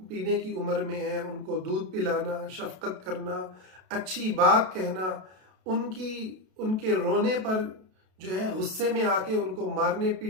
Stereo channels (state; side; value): late; left; 32 ms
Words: پینے کی عمر میں ہیں، ان کو دودھ پلانا، شفقت کرنا، اچھی بات کہنا، ان کے رونے پر جو ہے غصے میں آ کے ان کو مارنے